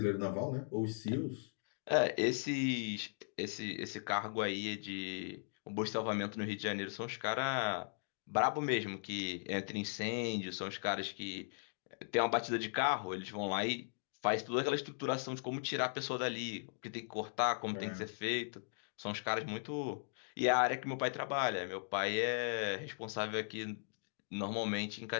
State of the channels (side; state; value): right; silent; digital silence